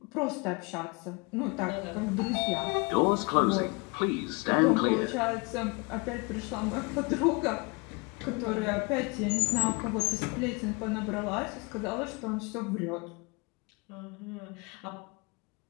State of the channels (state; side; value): quieter; right; 28.7 dB